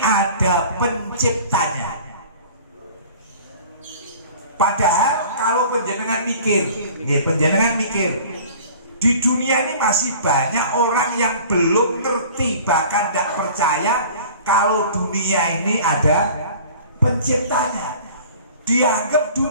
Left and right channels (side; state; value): both; inverted; correlation -0.45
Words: penciptanya. Padahal kalau penjenengan mikir, di dunia ini masih banyak orang yang belum ngerti, bahkan tidak percaya kalau dunia ini ada penciptanya. Dianggap